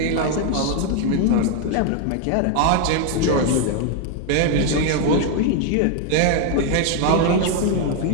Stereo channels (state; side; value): different; both; correlation 0.00